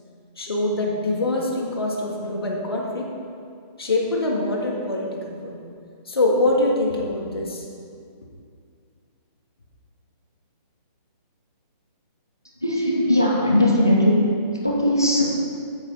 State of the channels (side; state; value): both; inverted; correlation -0.55